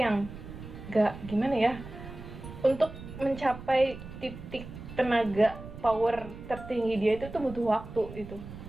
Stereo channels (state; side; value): noise; right; rumble, 13 dB below the sound